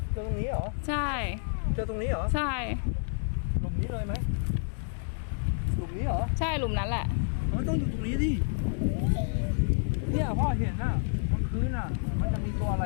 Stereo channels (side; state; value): right; silent; digital silence